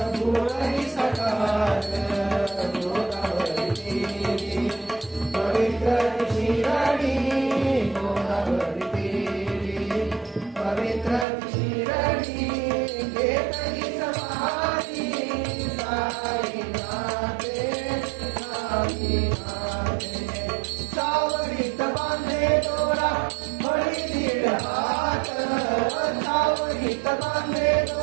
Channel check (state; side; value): drops out; left; at 11.2 s